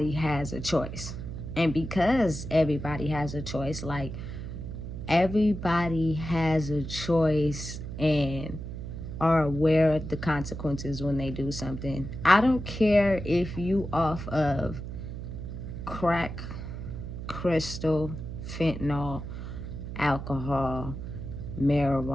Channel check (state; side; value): noise; right; hum, 8 dB below the sound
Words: has a choice. And because everybody has a choice, like, everybody has a choice and are aware of the consequences when they do something. I don't care if you off of crack, crystal, fentanyl, alcohol,